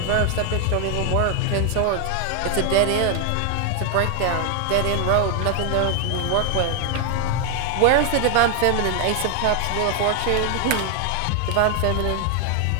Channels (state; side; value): different; both; correlation 0.00